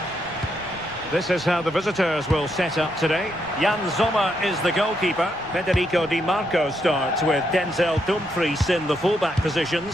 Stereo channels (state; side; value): noise; right; rumble, 21 dB below the sound